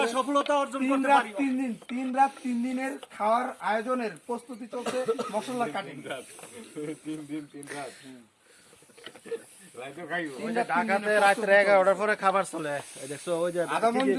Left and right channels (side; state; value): both; identical; correlation 1.00